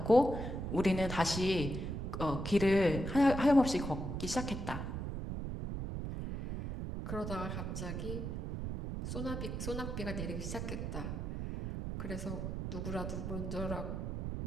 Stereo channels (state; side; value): noise; right; rumble, 4 dB below the sound